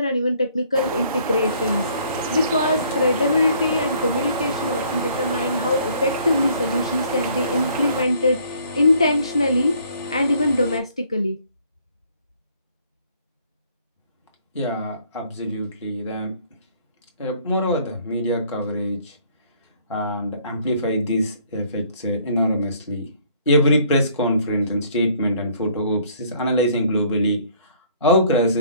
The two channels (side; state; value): both; inverted; correlation -0.61